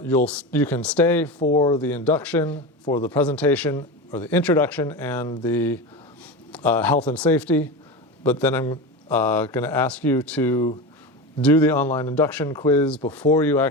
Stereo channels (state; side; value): normal; both; correlation 0.23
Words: can stay for the induction, for the presentation, or the introduction and the health and safety, but then I'm going to ask you to do the online induction quiz before you